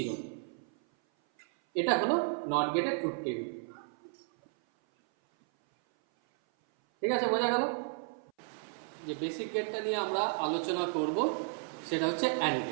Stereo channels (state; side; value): silent; left; 56 dB below the other